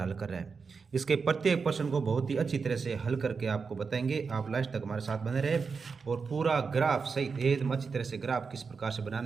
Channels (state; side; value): quieter; left; 5.2 dB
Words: कर रहे हैं। इसके प्रत्येक प्रश्न को बहुत ही अच्छी तरह से हल करके आपको बताएंगे। आप लास्ट तक हमारे साथ बने रहे और पूरा ग्राफ सहित एकदम अच्छी तरह से ग्राफ किस प्रकार से